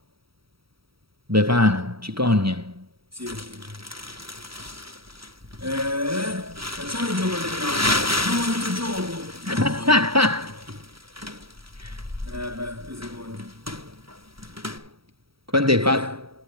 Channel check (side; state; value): left; late; 0.75 ms